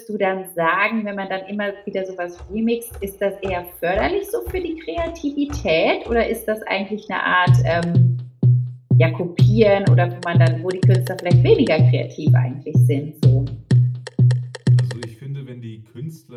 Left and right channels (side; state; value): both; identical; correlation 1.00